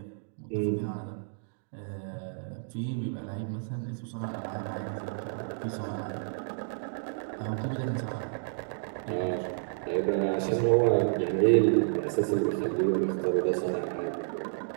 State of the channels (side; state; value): left; silent; digital silence